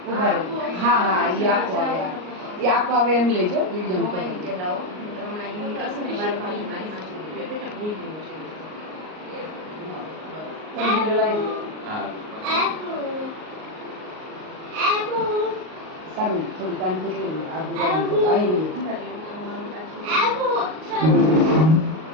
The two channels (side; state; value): left; late; 38 ms